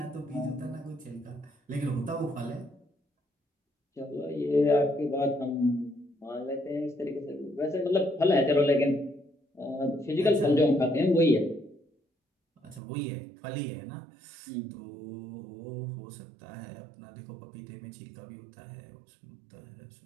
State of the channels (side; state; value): left; drops out; at 12.8 s